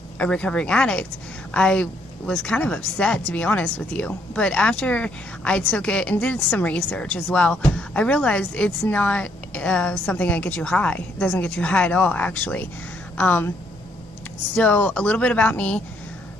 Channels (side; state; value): both; normal; correlation 0.70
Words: a recovering addict. I was kind of upset, to be honest with you. But after I took it and did some research as well, I realized it's not something that gets you high. It doesn't get you high at all, actually. So a little bit about me.